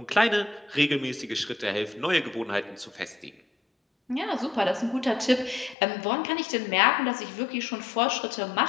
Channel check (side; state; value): right; drops out; at 5.8 s